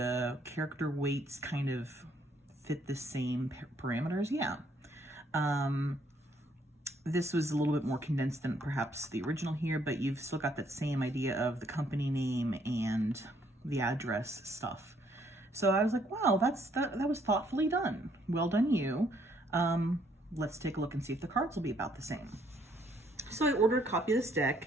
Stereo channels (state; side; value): normal; both; correlation 0.68